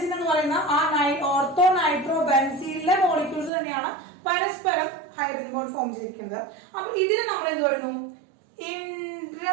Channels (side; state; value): left; drops out; at 3.5 s